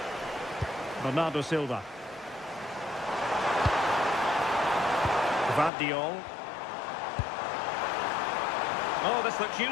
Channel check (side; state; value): right; drops out; at 5.7 s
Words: Bernardo Silva. Gvardiol. Oh, this looks